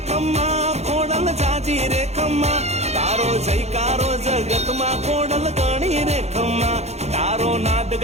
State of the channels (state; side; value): late; left; 0.31 ms